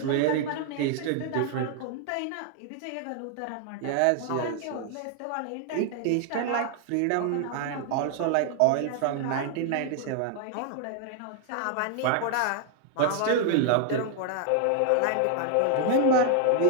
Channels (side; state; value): both; different; correlation 0.00